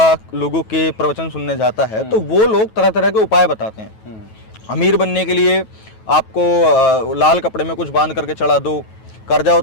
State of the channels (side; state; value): right; late; 9.2 ms